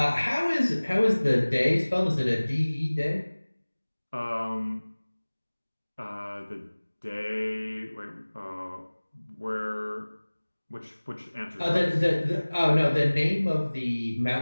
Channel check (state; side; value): inverted; both; correlation -1.00